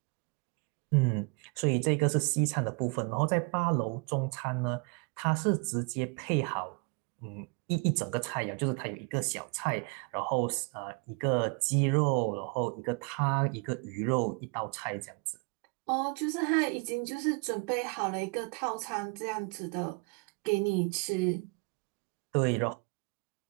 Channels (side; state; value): left; quieter; 32.8 dB